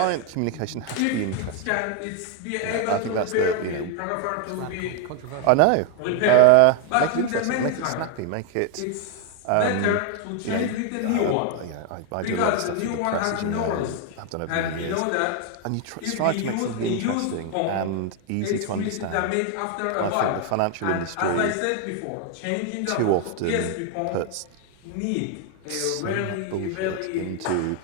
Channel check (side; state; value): both; different; correlation 0.01